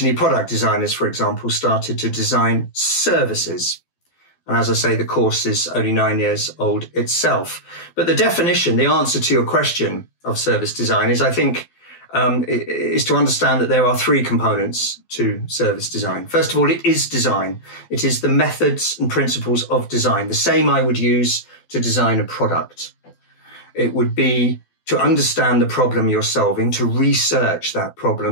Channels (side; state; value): right; late; 12 ms